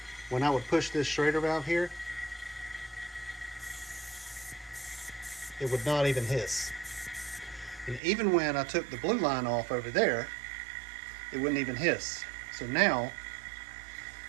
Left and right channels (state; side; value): drops out; left; at 8.0 s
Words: when I would push this Schrader valve here, it would not even hiss. And even when I took the blue line off over there, it wouldn't even hiss. So now,